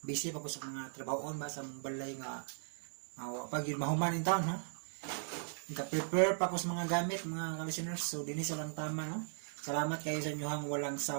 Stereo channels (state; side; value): silent; left; 52 dB below the other